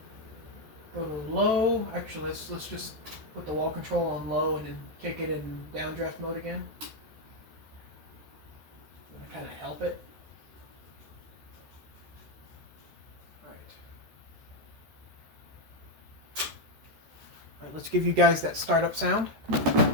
go to low. Actually, let's just put the wall control on low and then kick it in downdraft mode again. I'm going to kind of help it. Alright. let's give you guys that startup sound.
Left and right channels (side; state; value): left; late; 13 ms